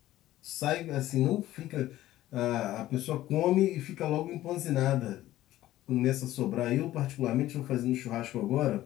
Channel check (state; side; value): quieter; right; 14.7 dB